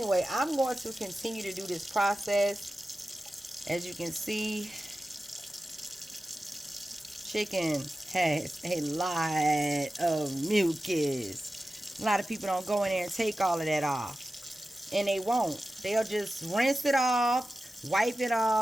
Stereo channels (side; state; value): both; normal; correlation 0.94